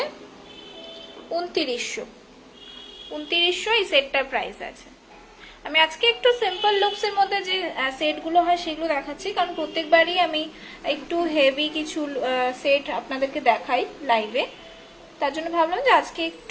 2900। 2900 এই সেটটার প্রাইস আছে। আমি আজকে একটু সিম্পল লুকস এর মধ্যে যে সেটগুলো হয় সেগুলো দেখাচ্ছি, কারণ প্রত্যেকবারই আমি একটু হেভি কিছু সেট আপনাদেরকে দেখাই লাইভে। তার জন্য ভাবলাম যে আজকে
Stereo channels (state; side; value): identical; both; correlation 1.00